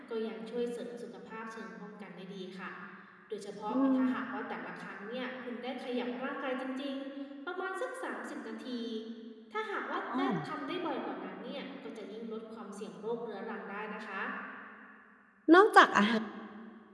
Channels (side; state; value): both; identical; correlation 1.00